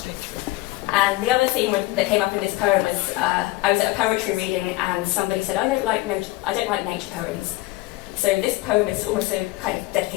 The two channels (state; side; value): quieter; right; 19.4 dB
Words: And the other theme that came up in this poem was I was at a poetry reading and somebody said, I don't like nature poems. So this poem is also kind of